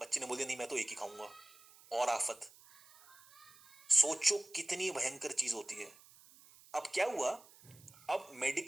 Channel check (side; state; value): right; noise; hiss, 23 dB below the sound